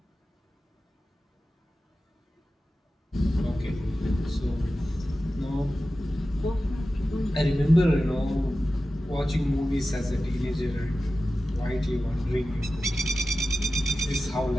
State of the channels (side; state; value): both; normal; correlation 0.94